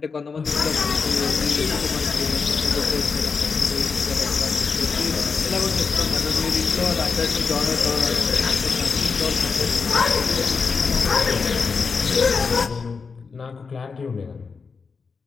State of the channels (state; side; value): quieter; right; 5.1 dB